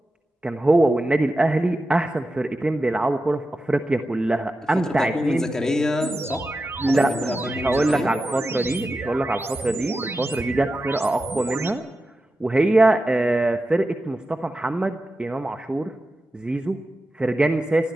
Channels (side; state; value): both; normal; correlation 0.91